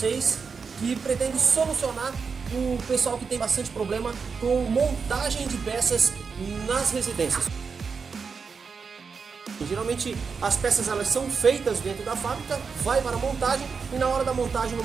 que pretende solucionar o pessoal que tem bastante problema com montagem de peças nas residências. Geralmente as peças elas são feitas dentro da fábrica, vai para a montagem e na hora da montagem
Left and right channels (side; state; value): left; quieter; 5.5 dB